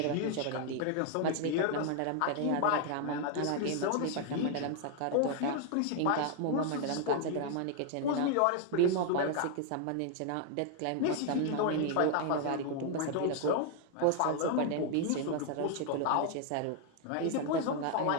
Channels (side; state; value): both; different; correlation 0.00